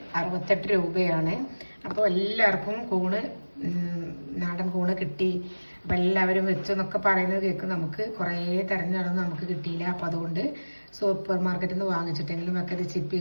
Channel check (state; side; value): inverted; both; correlation -1.00